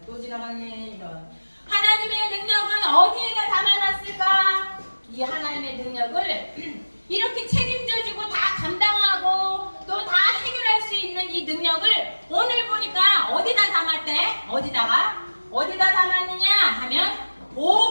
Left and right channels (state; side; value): inverted; both; correlation -1.00